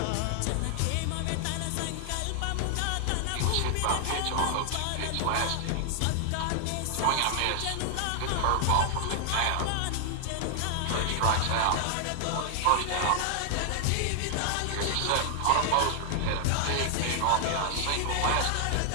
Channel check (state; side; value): different; both; correlation 0.00